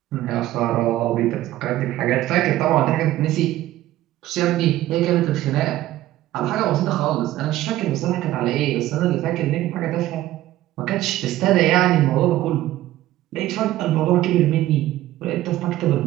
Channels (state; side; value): quieter; left; 14.8 dB